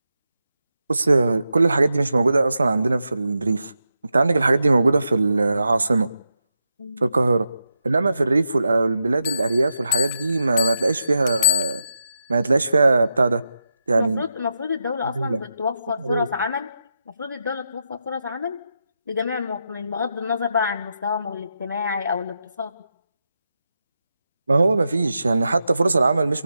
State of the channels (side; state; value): both; inverted; correlation -0.86